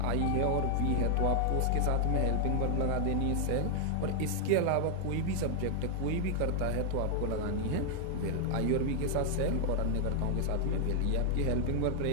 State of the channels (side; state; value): both; different; correlation 0.00